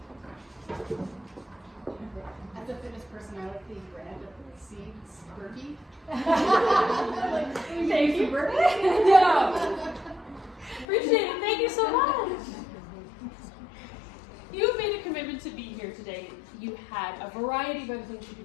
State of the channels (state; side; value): drops out; right; at 10.9 s